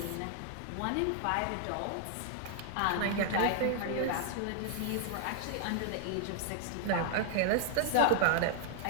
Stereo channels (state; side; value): different; both; correlation 0.00